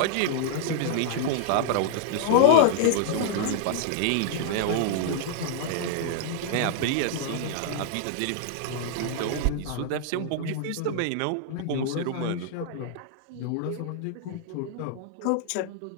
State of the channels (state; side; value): different; both; correlation -0.01